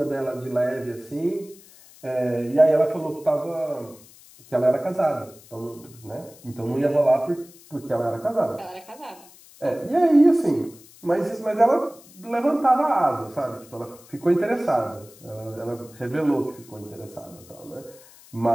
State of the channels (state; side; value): noise; left; hiss, 23 dB below the sound